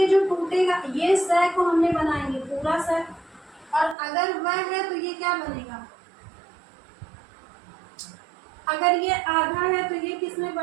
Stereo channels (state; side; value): drops out; left; at 4.0 s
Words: जो टूटेगा, ये स को हमने बनाएंगे पूरा स, और अगर वह है तो ये क्या बनेगा, अगर ये आधा है तो ये किस में